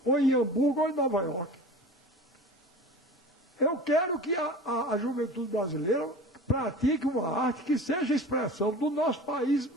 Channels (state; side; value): normal; both; correlation 0.37